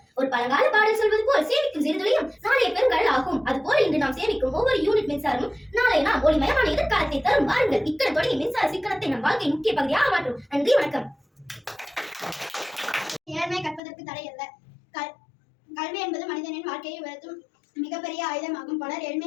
ஒரு பழங்கால பாடல் சொல்வது போல் சேமிக்கும் சிறுதுளியும் நாளைய பெருங்கடல் ஆகும். அதுபோல இன்று நாம் சேமிக்கும் ஒவ்வொரு யூனிட் மின்சாரமும் நாளை நாம் ஒளிமயமான எதிர்காலத்தை தரும். வாருங்கள், இக்கணம் தொடங்கி மின்சார சிக்கனத்தை நம் வாழ்க்கை முக்கிய பகுதியாக மாற்றும். நன்றி, வணக்கம். ஏழ்மை கற்பதற்கு தடை அல்ல. கல்வி என்பது மனிதனின் வாழ்க்கையை உயர்த்தும் மிகப்பெரிய ஆயுதமாகும். பலர்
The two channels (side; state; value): right; drops out; at 13.8 s